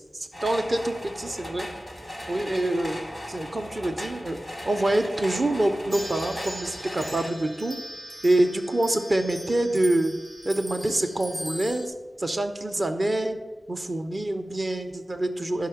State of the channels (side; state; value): both; normal; correlation 0.96